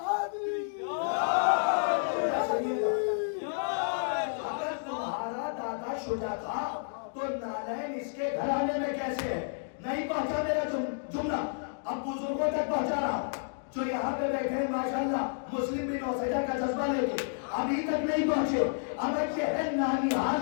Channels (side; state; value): right; silent; digital silence